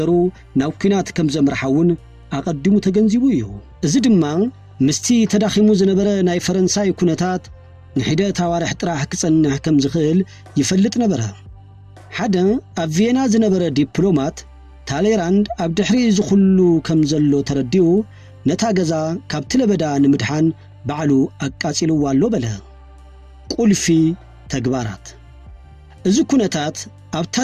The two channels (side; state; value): both; identical; correlation 1.00